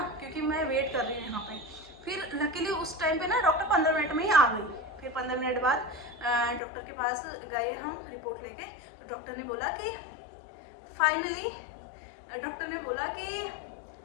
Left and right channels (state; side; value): drops out; right; at 6.6 s